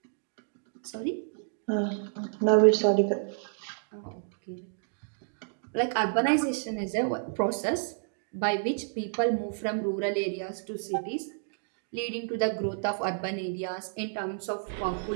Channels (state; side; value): silent; left; digital silence